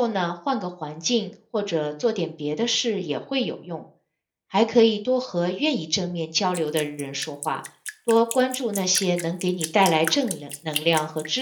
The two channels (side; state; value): both; identical; correlation 1.00